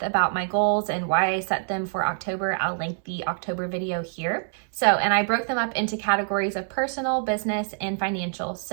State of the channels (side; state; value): left; silent; digital silence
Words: about my goals and why I set them for October, I'll link the October video here. And I broke them up into categories of personal, business, and financial.